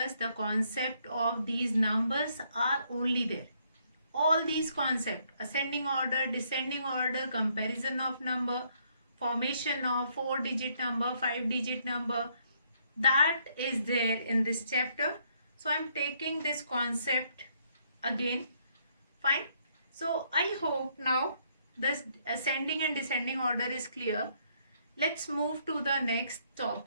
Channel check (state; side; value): inverted; both; correlation -0.70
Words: The concept of these numbers are only there. All these concepts, ascending order, descending order, comparison of number, formation of 4-digit number, 5-digit number, that is there in this chapter. So I'm taking this concept again. Fine. So I hope now this ascending and descending order is clear. Let's move to the next